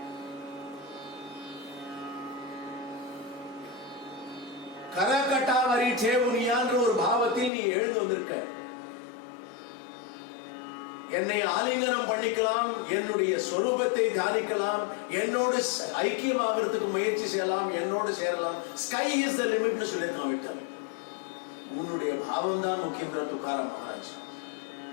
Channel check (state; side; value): drops out; right; at 7.5 s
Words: கரகட்டாவரி சேவுனியான்ற ஒரு பாவத்தில் நீ எழுந்து வந்திருக்க என்னை ஆலிங்கனம் பண்ணிக்கலாம் என்னுடைய சொரூபத்தை தியானிக்கலாம் என்னோடு ஐக்கியமாகிறதுக்கு முயற்சி செய்யலாம் என்னோடு சேரலாம் ஸ்கை இஸ் த லிமிட்னு சொல்லி நான் விட்டேன் உன்னுடைய பாவம் தான் முக்கியம் துக்காராம் மகாராஜ்